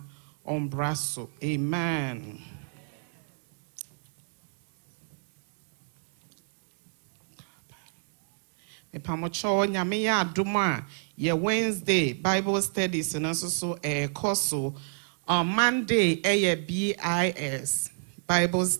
ombraso. Amen. Me pamocho nyame ya adoma ye Wednesday Bible studies and also so course on Monday BIS Bible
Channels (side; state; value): left; silent; digital silence